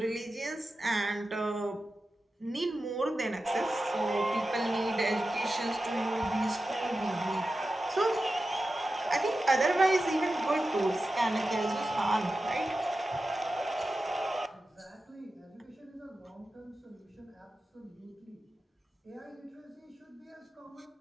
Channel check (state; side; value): normal; both; correlation 0.93